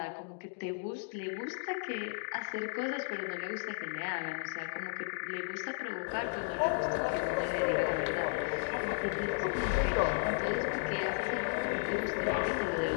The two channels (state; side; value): silent; right; digital silence